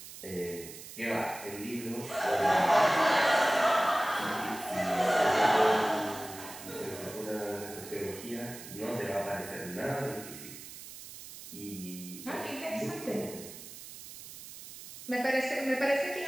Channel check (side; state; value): right; noise; hiss, 14 dB below the sound